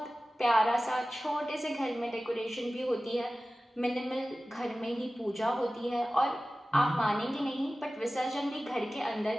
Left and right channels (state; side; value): normal; both; correlation 0.96